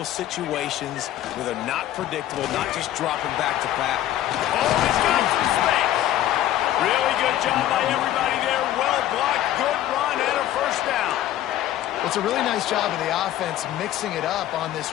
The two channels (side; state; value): right; quieter; 12.9 dB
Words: situations where they're not predictable, not just dropping back to back. Oh, he's got some space. Really good job by everybody there. Well blocked, good run, and a 1st down. Well, it's a really nice job of the offense mixing it up on this